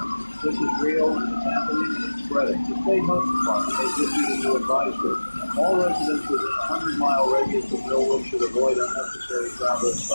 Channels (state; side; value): inverted; both; correlation -1.00